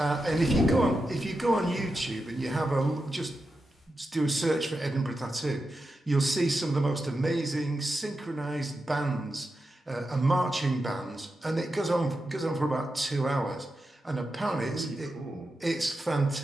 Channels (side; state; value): both; normal; correlation 0.89